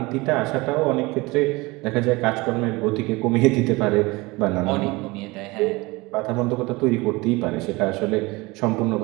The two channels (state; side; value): quieter; left; 23.2 dB